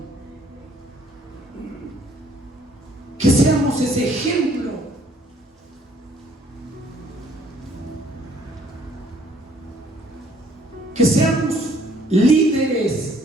Que seamos ese ejemplo. Que seamos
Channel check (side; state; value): both; normal; correlation 0.62